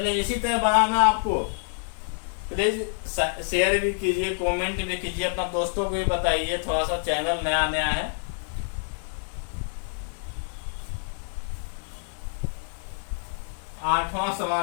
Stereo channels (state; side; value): silent; right; 57 dB below the other